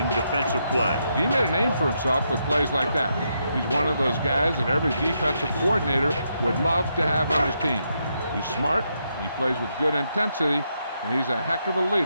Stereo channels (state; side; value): inverted; both; correlation -0.80